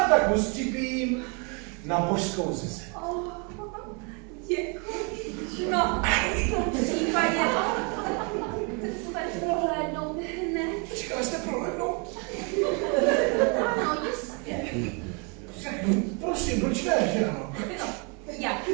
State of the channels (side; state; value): left; quieter; 34.6 dB